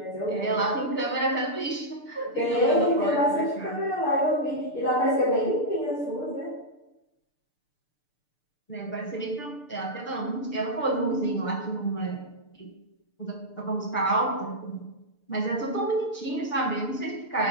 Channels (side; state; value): right; late; 6.7 ms